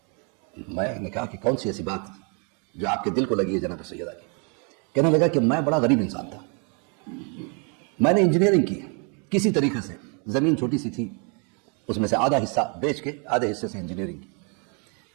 میں نے کہا کہ کون سی ایسی بات جو آپ کے دل کو لگی ہے جناب سیدہ کی؟ کہنے لگا کہ میں بڑا غریب انسان تھا، میں نے انجینئرنگ کی، کسی طریقے سے زمین چھوٹی سی تھی، اس میں سے آدھا حصہ بیچ کے آدھے حصے سے انجینئرنگ کی.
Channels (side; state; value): left; quieter; 36.6 dB